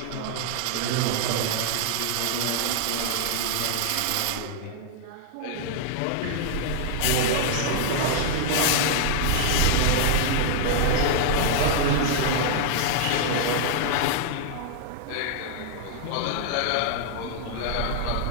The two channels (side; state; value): both; different; correlation -0.01